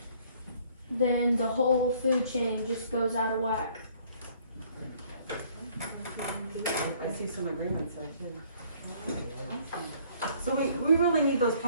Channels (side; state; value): both; inverted; correlation -0.60